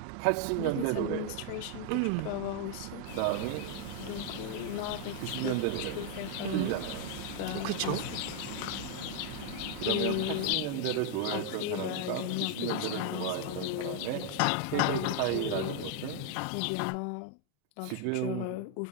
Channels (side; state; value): both; different; correlation 0.00